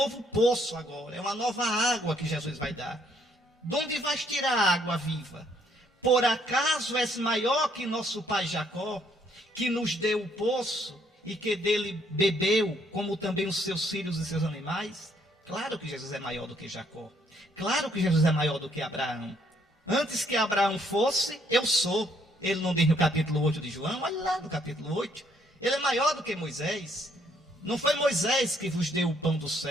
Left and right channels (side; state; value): both; normal; correlation 0.68